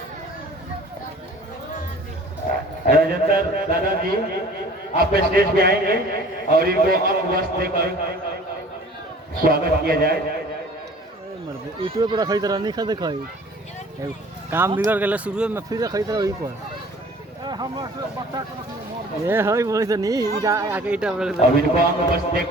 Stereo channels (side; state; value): both; normal; correlation 0.49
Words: राजेंद्र दादाजी आप स्टेज पे आएंगे और इनको अंग वस्त्र देकर स्वागत किया जाए। यूट्यूब पर रखी तरह नहीं खा दिखाई काम बिगड़ गए शुरू में, फिर रखी तरह वही पर ये है बोले तो नहीं आके इटा अब इनको अंग वस्त्र दे